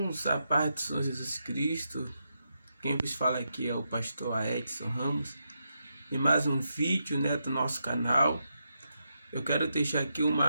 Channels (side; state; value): both; inverted; correlation -0.84